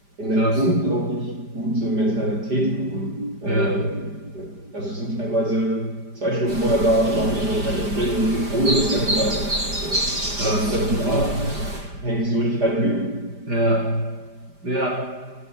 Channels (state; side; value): late; left; 5.0 ms